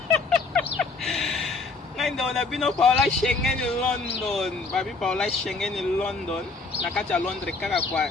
ngai ndo na bino Paola Schengen London babi Paola Schengen London na kati ya Londres kaka kwa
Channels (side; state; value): right; quieter; 3.8 dB